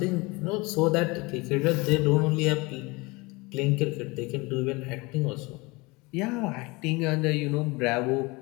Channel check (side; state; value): right; quieter; 25.0 dB